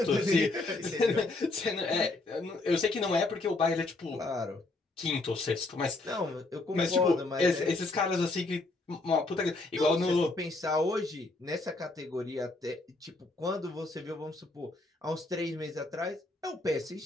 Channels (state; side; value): quieter; right; 3.1 dB